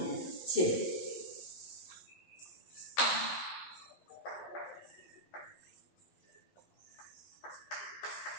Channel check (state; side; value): late; right; 11 ms